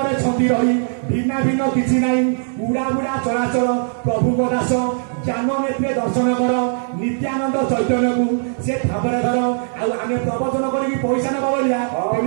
ଛନ୍ଦି ରହି ଭିନ୍ନ ଭିନ୍ନ କିଛି ନାହିଁ ଉଡ଼ା ବୁଡ଼ା ଚଳାଚଳ ପ୍ରଭୁଙ୍କ ଦାସ ଜ୍ଞାନ ନେତ୍ରେ ଦର୍ଶନ କର ନିତ୍ୟାନନ୍ଦ ଚୈତନ୍ୟକୁ ସେ ଠାବରେ ଧର ଆଉ ଆମେ ପ୍ରବଚନ କରିକି ପଇସା ନେବା ବଳିଆ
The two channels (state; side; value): silent; left; digital silence